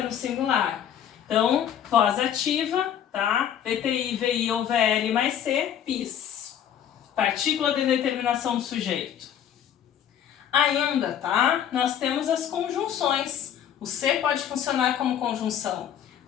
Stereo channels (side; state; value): right; quieter; 9.6 dB